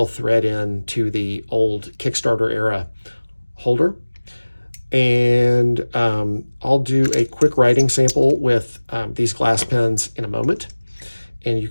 thread in to the old Kickstarter era holder. And I'll do a quick writing sample with these glass pens in a moment, and you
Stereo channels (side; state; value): both; inverted; correlation -1.00